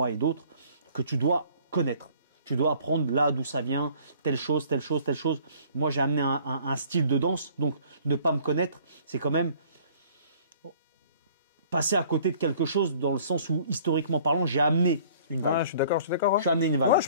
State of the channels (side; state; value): both; inverted; correlation -0.54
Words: et d'autres, que tu dois connaître. Tu dois apprendre là d'où ça vient, telle chose, telle chose, telle chose. Moi, j'ai amené un style de danse, donc ne pas me connaître, c'est quand même passer à côté de quelque chose dans le sens où, historiquement parlant, j'ai amené une vague. Ouais, je suis d'accord. Ouais. J'ai amené une vague. Ouais, je